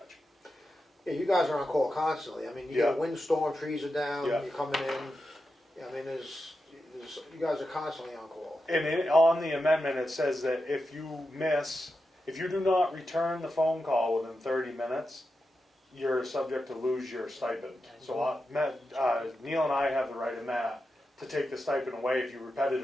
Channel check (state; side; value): normal; both; correlation 0.89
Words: Yeah, you guys are on call constantly. I mean, you get a windstorm, trees are down, Yeah. you're coming in. I mean, you guys are constantly on call. And on the amendment, it says that if you do not return the phone call within 30 minutes, you're subject to lose your stipend. So Neil and I have the right, and Matt, to take the stipend away if you